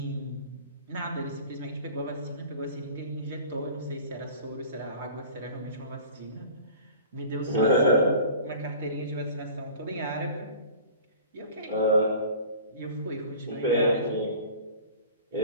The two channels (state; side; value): inverted; both; correlation -0.43